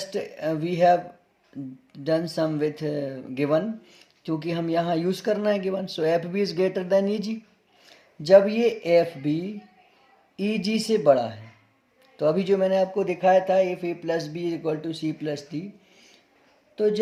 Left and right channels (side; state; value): both; identical; correlation 1.00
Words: we have done some with given, क्योंकि हम यहाँ यूज़ करना है given. So FB is greater than EG। जब ये FB EG से बड़ा है, तो अभी जो मैंने आपको दिखाया था if A plus B is equal to C plus D, तो